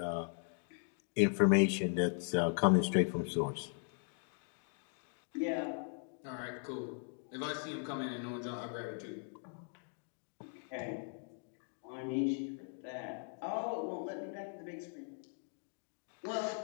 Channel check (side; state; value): right; silent; 52 dB below the other